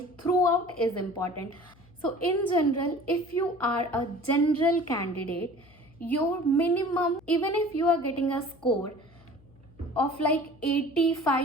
throughout is important. So in general, if you are a general candidate, your minimum, even if you are getting a score of like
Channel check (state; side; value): noise; left; hum, 27 dB below the sound